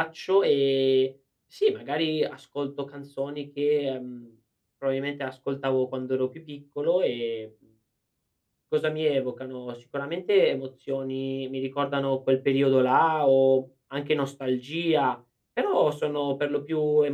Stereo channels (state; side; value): identical; both; correlation 1.00